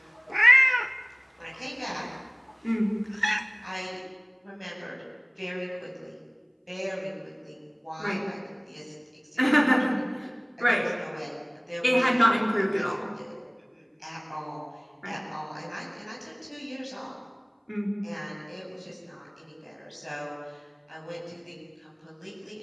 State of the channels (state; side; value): identical; both; correlation 1.00